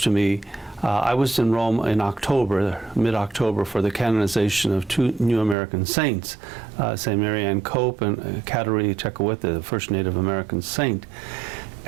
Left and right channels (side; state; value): left; drops out; at 5.6 s